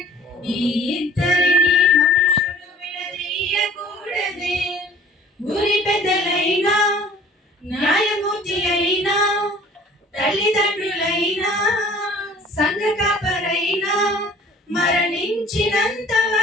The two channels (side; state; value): both; normal; correlation 0.51